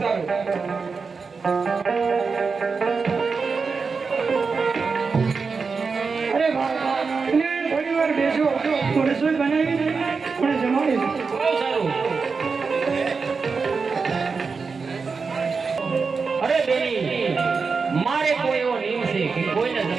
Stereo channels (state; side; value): quieter; left; 4.9 dB